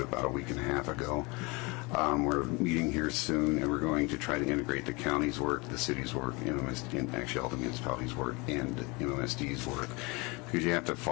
about a week and a half ago. We're meeting here soon, and we're going to try to integrate the county's work, the city's work, and actually all the municipalities' work, and MMSD's work, because you have to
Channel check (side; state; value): right; quieter; 27.0 dB